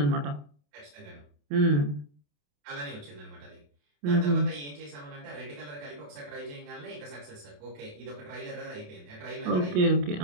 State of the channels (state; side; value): late; left; 28 ms